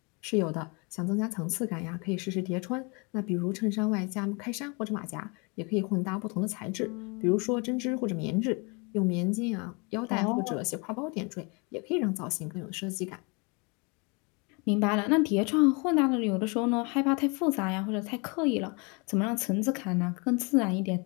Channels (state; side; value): quieter; right; 30.9 dB